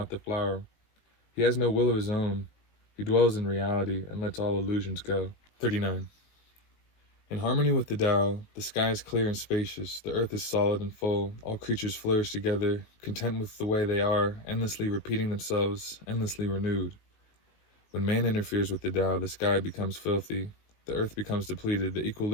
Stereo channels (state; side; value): late; right; 19 ms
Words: the flower. He has no will of his own. He dwells in reality and lets all illusions go. 39. In harmony with the Tao, the sky is clear and spacious, the earth is solid and full, all creatures flourish together, content with the way they are, endlessly repeating themselves, endlessly renewed. When man interferes with the Tao, the sky becomes filthy, the earth becomes depleted, the